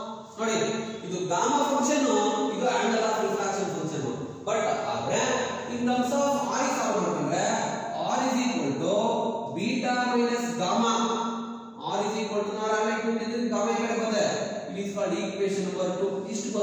ನೋಡಿ ಇದು gamma function, ಇದು angle of refraction function. But ಆದ್ರೆ in terms of R solve ಮಾಡ್ಕೊಂಡ್ರೆ R is equal to beta minus gamma. R is equal to ನಾವು already ಕೊಟ್ಟಿದ್ದೀವಿ, gamma ಈ ಕಡೆ ಬಂದೆ. It is called equation number 2. ಇಷ್ಟು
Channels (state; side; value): identical; both; correlation 1.00